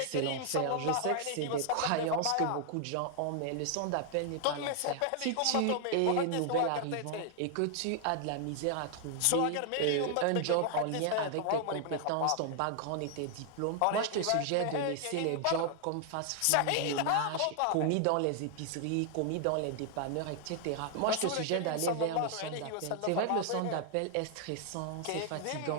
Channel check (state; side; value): different; both; correlation 0.00